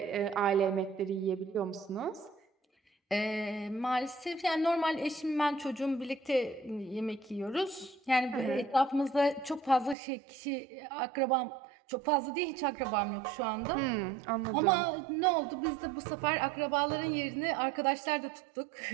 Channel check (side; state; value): left; drops out; at 10.0 s